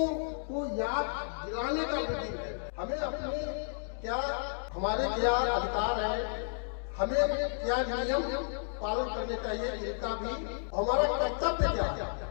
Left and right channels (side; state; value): right; silent; digital silence